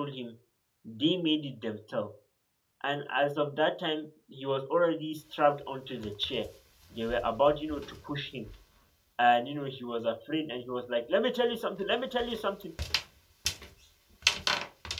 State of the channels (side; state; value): both; identical; correlation 1.00